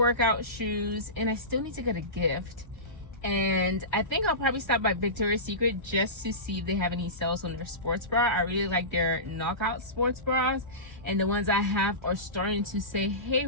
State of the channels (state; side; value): late; right; 1.3 ms